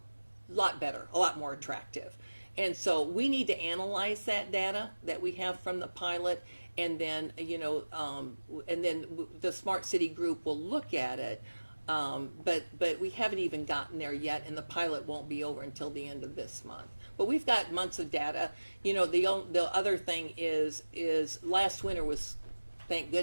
better, a lot more attractive. And so we need to analyze that data that we have from the pilot, and then and then the Smart City group will look at it. But we haven't even gotten there yet, and the pilot won't be over until the end of this month. But we've got months of data. You know, the other thing is last winter was, thank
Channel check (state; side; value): inverted; both; correlation -1.00